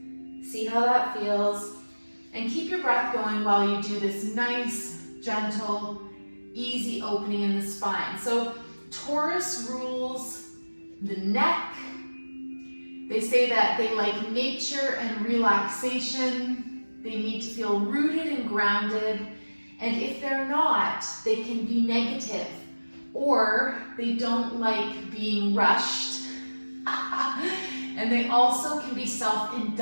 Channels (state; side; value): inverted; both; correlation -1.00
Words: See how that feels. And keep your breath going while you do this nice, gentle, easy opening in the spine. So Taurus rules the neck. They say that they like nature and relaxation. They need to feel rooted and grounded. And if they're not, they can be negative, or they don't like being rushed. And they also can be